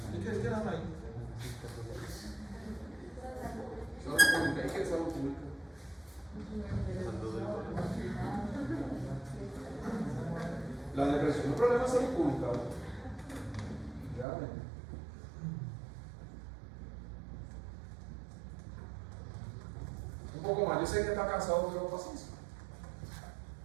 ¿Y qué dan ahí? Salud pública. ¿Y qué es salud pública? La depresión es un problema de salud pública. Realmente. Un poco más. Yo sé que está cansado, pero paciencia.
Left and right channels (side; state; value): left; drops out; at 14.2 s